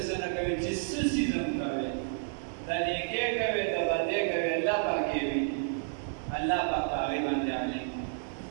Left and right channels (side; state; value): left; silent; 57 dB below the other